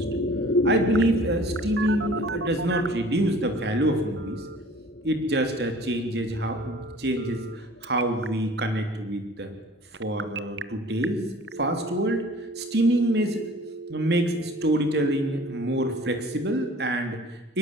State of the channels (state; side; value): normal; both; correlation 0.48